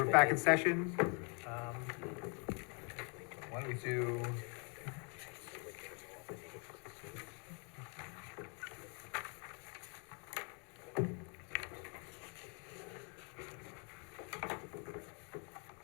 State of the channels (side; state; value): right; quieter; 36.2 dB